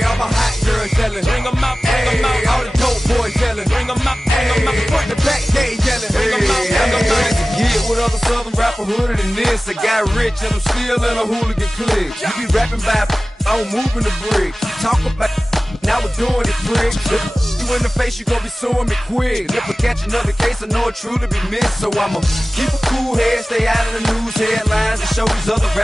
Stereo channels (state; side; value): normal; both; correlation 0.97